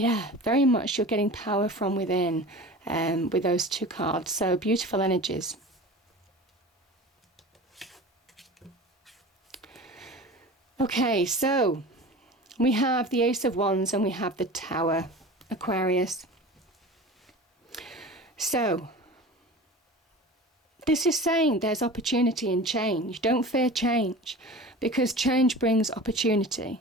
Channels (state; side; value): normal; both; correlation 0.36